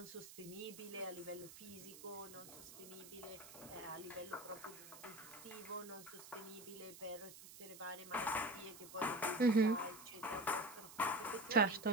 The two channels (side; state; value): right; noise; hiss, 15 dB below the sound